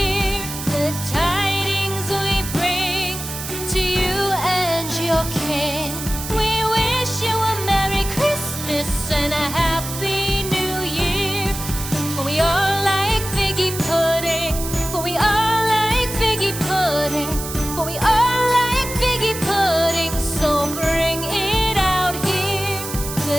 The tidings we bring to you and your kin. We wish you a Merry Christmas and a Happy New Year. For we all like figgy pudding. For we all like figgy pudding. For we all like figgy pudding. So bring it out here.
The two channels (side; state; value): right; noise; hiss, 8 dB below the sound